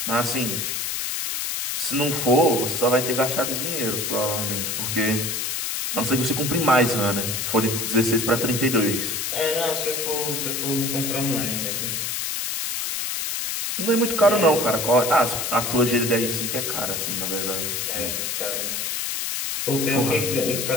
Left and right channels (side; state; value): left; noise; hiss, 2 dB below the sound